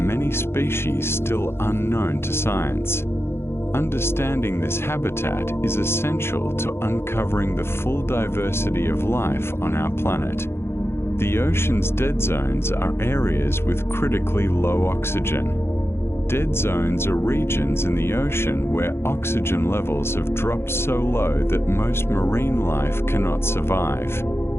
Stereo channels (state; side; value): late; right; 0.12 ms